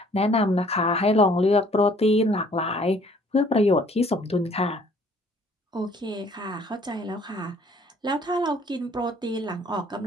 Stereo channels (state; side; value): normal; both; correlation 0.58